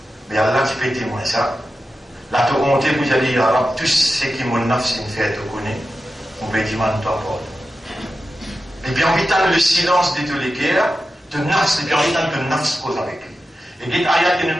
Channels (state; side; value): normal; both; correlation 0.92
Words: mais Allah tu peux témoigner ça. La te honte vous allez dire, alors, tout ce qui mon nafs fait te connaît, on peut dire, man, toi, Paul. Et puis, en vitant le silence de tous les guerres, te nafs, et puis en vitant te nafs cause avec lui. Et dit, ayat qui nous